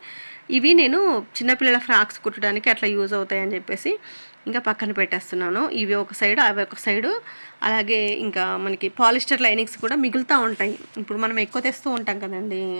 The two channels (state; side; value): inverted; both; correlation -1.00